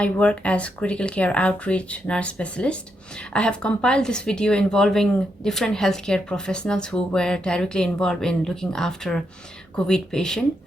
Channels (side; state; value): both; normal; correlation 0.81